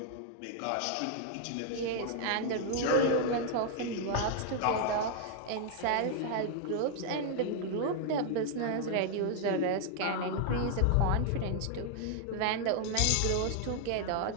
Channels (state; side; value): different; both; correlation 0.00